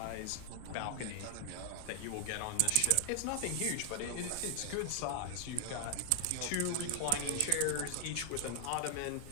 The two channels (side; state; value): both; different; correlation 0.00